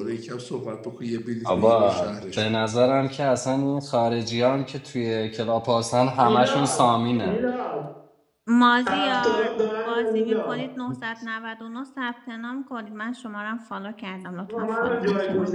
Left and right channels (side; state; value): both; identical; correlation 1.00